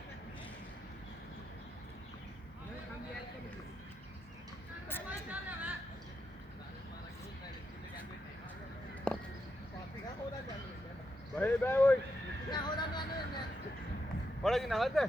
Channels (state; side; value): normal; both; correlation 0.84